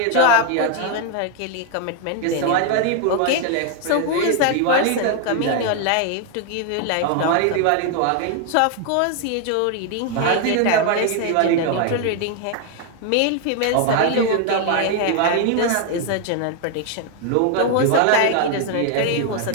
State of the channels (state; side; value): different; both; correlation 0.00